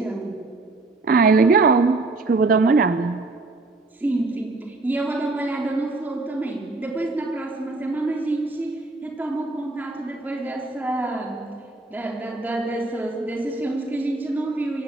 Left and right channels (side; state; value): left; quieter; 3.4 dB